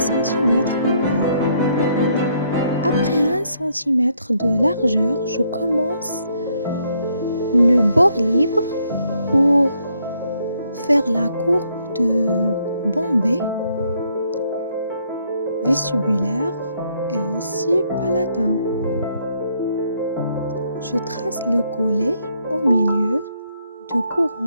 encore. Après 1 cm de largeur, je commence le bord libre pour faire la courbe de bombée vestibulaire et aussi palatin. Je trace le collet au milieu de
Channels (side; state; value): both; inverted; correlation -0.71